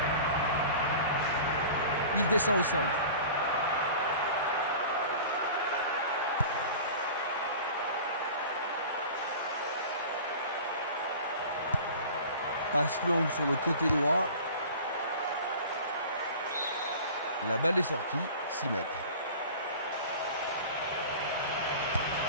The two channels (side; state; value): both; inverted; correlation -0.39